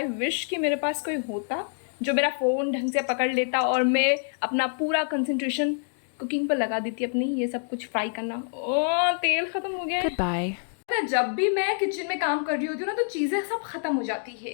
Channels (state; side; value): silent; right; digital silence